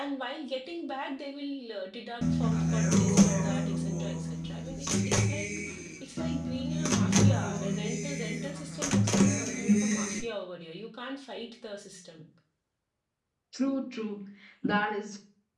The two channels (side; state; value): both; identical; correlation 1.00